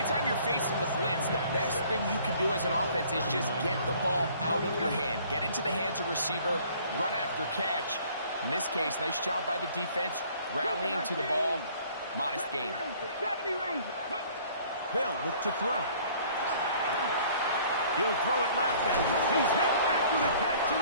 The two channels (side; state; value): both; inverted; correlation -0.55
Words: you're facing the blitz, the best thing you can do as an offense is just get the ball out of your hand. Get into the hands of receiver, run after catch. In this case, nice job by the defense, rallying to the ball. Modest gain. They'll look to throw. He'll throw it left, and he's hit after the catch, and